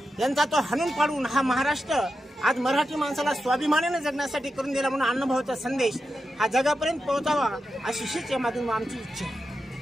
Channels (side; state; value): both; normal; correlation 0.89